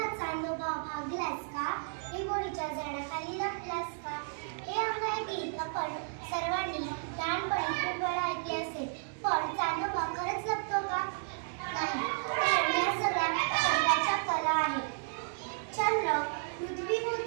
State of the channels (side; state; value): left; silent; digital silence